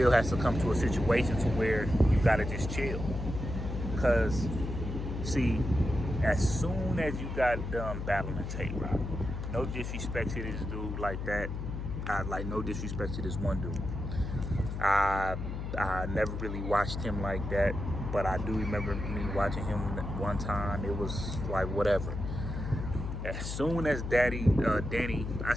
has to come to a situation to where you got to just chill. Because, see, as soon as you got done battling Tay-Rock, no disrespect to this dude like that. No disrespect to this one dude. I never really watched him like that, but I do remember me watching him one time. It was like whatever. As soon as Danny, I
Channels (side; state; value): left; noise; hum, 5 dB below the sound